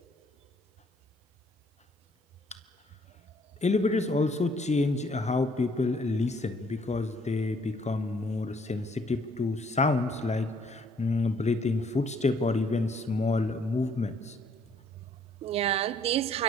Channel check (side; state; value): both; normal; correlation 0.63